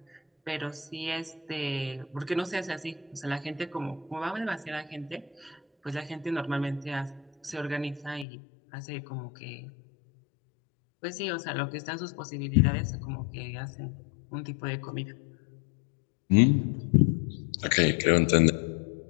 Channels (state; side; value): drops out; right; at 8.2 s